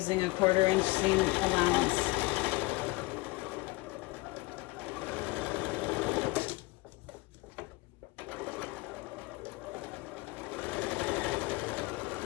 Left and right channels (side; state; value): right; quieter; 22.7 dB